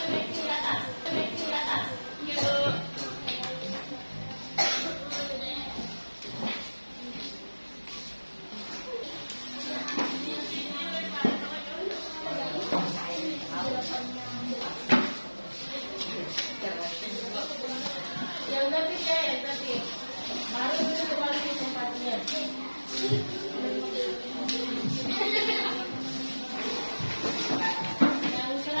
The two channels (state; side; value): inverted; both; correlation -1.00